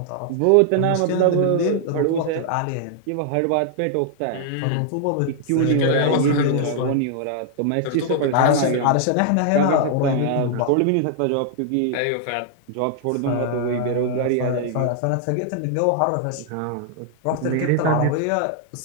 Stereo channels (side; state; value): both; different; correlation 0.00